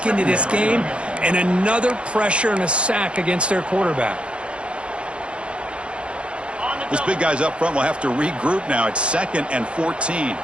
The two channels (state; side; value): late; left; 0.058 ms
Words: into this game, and another pressure and a sack against their quarterback. This big guy's up front will have to regroup now. It's 2nd and 14.